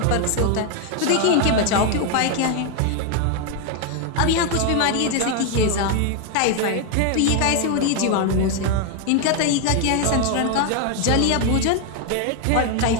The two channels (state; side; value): different; both; correlation 0.01